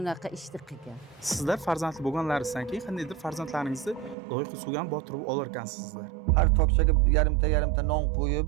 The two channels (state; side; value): drops out; left; at 4.2 s